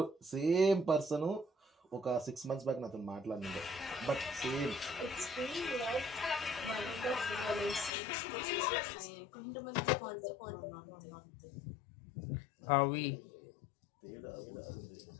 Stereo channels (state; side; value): drops out; right; at 7.9 s